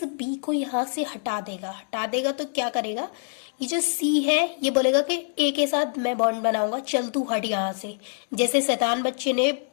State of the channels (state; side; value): silent; right; 62 dB below the other